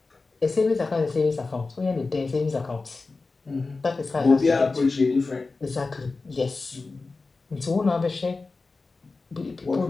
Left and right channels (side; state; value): right; quieter; 3.8 dB